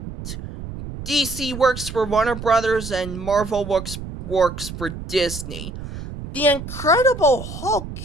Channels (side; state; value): right; noise; rumble, 10 dB below the sound